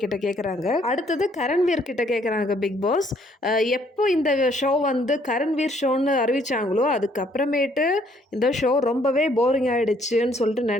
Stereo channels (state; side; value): normal; both; correlation 0.65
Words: கிட்ட கேட்குறாங்க. அடுத்தது கரண்வீர் கிட்ட கேட்குறாங்க பிக் பாஸ், எப்போ இந்த ஷோ வந்து கரண்வீர் ஷோன்னு அறிவிச்சாங்களோ அதுக்கப்புறமேட்டு இந்த ஷோ ரொம்பவே போரிங் ஆகிடுச்சுன்னு சொல்லிட்டு